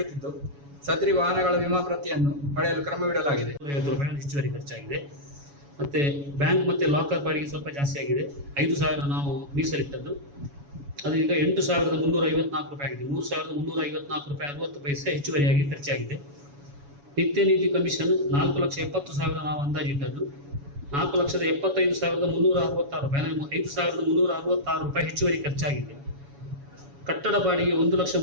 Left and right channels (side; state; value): left; late; 7.1 ms